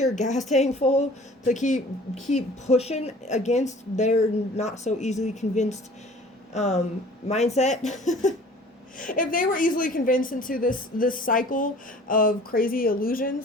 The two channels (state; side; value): normal; both; correlation 0.48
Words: gas tank full, to keep pushing against their not so easily convinced mindset. If they were easily convinced into this cycle of crazy